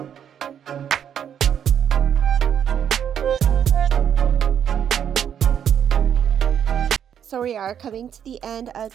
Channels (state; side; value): quieter; left; 8.8 dB